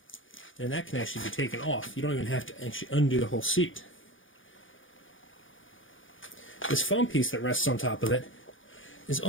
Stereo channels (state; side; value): late; right; 0.57 ms